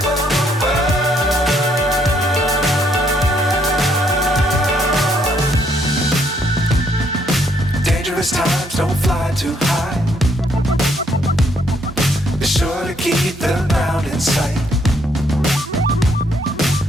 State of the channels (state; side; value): normal; both; correlation 0.70